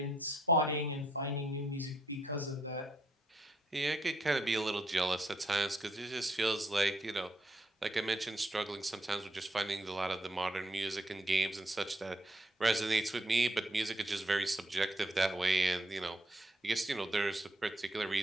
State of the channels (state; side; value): normal; both; correlation 0.74